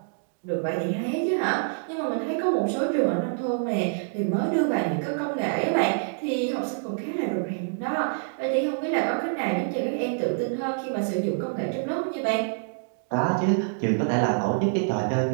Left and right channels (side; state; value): left; silent; digital silence